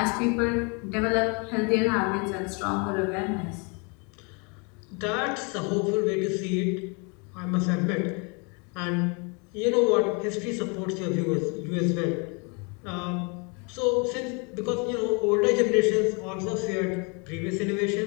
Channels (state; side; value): quieter; right; 33.0 dB